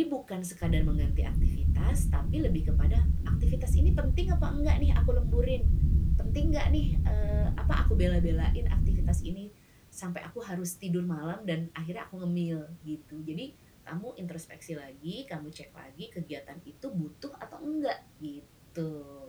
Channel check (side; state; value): both; identical; correlation 1.00